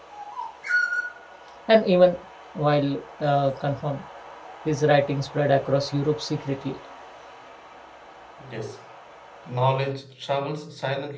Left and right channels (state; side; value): identical; both; correlation 1.00